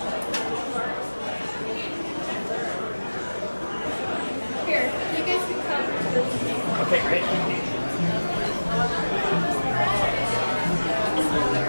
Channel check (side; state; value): both; inverted; correlation -1.00